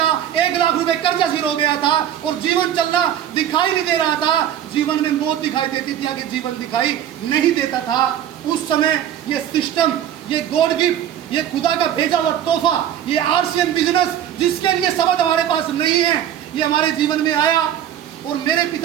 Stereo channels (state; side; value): quieter; left; 10.5 dB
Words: 1 लाख रुपए कर्जा सिर हो गया था और जीवन चलना दिखाई नहीं दे रहा था। जीवन में मौत दिखाई देती थी, आगे जीवन दिखाई नहीं देता था। उस समय ये सिस्टम, ये गॉड गिफ्ट, ये खुदा का भेजा हुआ तोहफा, ये आरसीएम बिजनेस जिसके लिए शब्द हमारे पास नहीं है, ये हमारे जीवन में आया और मेरे